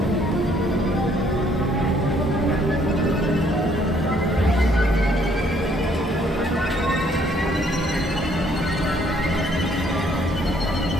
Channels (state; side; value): normal; both; correlation 0.65